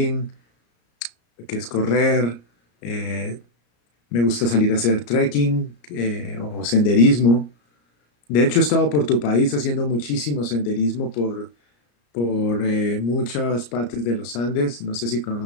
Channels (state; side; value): late; right; 34 ms